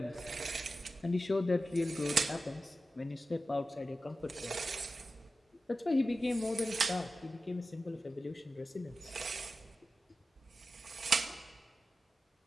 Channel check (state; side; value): normal; both; correlation 0.93